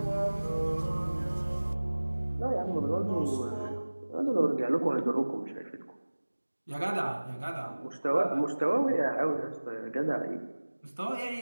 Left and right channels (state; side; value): inverted; both; correlation -1.00